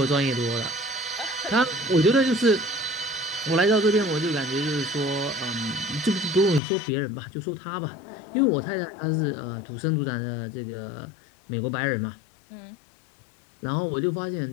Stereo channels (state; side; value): drops out; right; at 6.6 s